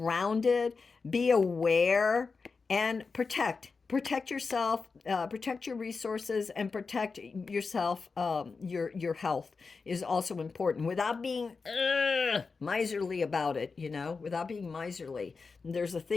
be aware, and protect yourself, protect your resources, and protect yourself. Your health is also important, without being miserly about it. Without being miserly. There's a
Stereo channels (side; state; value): right; quieter; 4.6 dB